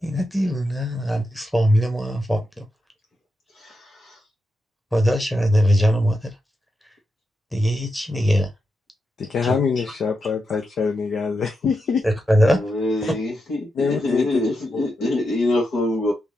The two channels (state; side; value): normal; both; correlation 0.86